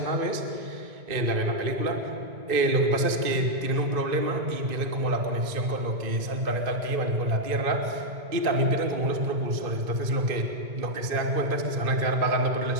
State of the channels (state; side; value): late; left; 2.5 ms